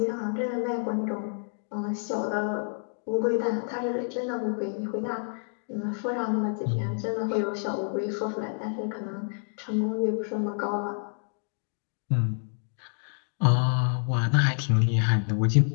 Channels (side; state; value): right; silent; 59 dB below the other